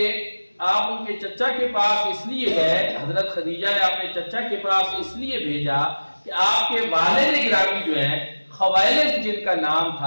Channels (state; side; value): inverted; both; correlation -1.00